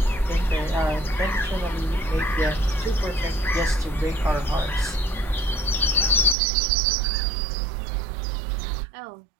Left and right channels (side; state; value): left; drops out; at 6.4 s